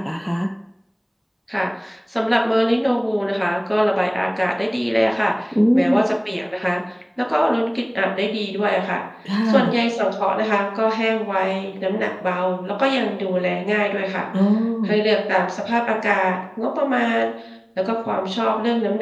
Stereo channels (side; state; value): both; identical; correlation 1.00